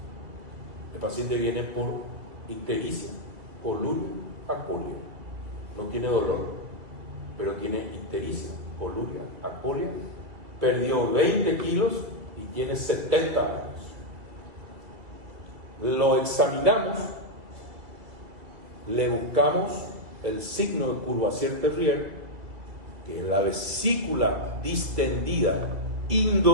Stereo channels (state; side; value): late; left; 2.5 ms